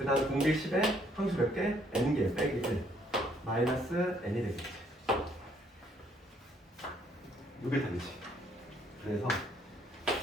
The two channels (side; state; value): both; normal; correlation 0.66